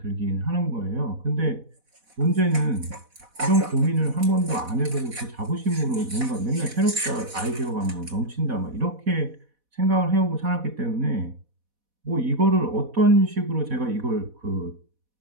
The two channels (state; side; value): late; left; 4.1 ms